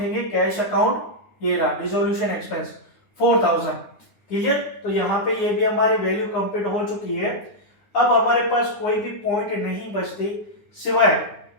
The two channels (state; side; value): late; right; 9.6 ms